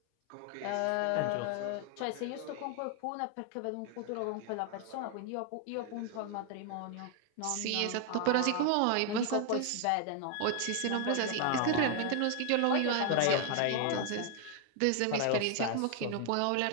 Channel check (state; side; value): different; both; correlation 0.00